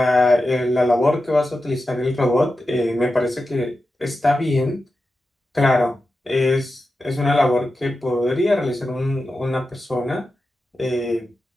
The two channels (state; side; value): normal; both; correlation 0.91